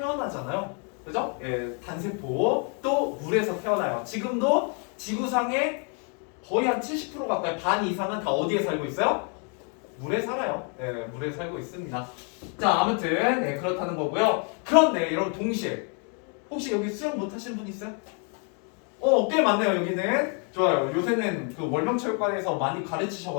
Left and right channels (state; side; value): quieter; right; 39.3 dB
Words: 그죠? 단세포 또 물에서 태어나요. 지금도 지구상의 거의 한 70% 가까이 반 이상은 다 어디에 살고 있어요? 물에 살아요. 물에 살고 있습니다. 자, 아무튼 그렇다는 거고요. 그런데 여러분 동시에 혹시 여기 수영 못하시는 분 있어요? 꽤 많네요. 여기는 좋아요. 요새는 그 월명체육관에서 많이